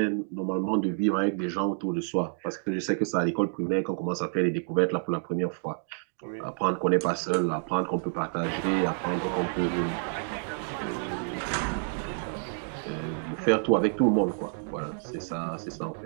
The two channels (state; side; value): silent; left; digital silence